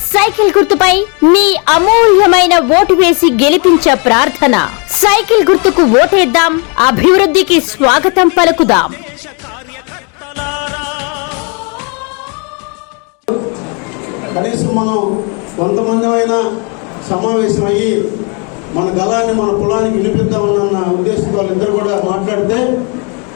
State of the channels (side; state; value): right; quieter; 34.8 dB